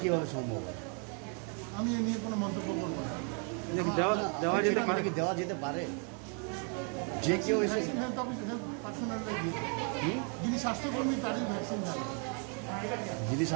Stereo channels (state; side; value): quieter; left; 39.3 dB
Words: কিভাবে সম্ভব? আমি এ নিয়ে কোনো মন্তব্য করব না। দেওয়া যেতে পারে যে কেউ এসে হেলথ অফিসার পার্সোনাল যিনি স্বাস্থ্যকর্মী তারই ভ্যাকসিন দেওয়া, যদি